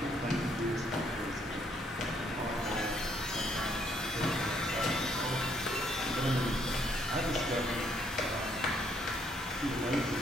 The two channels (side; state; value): both; normal; correlation 0.69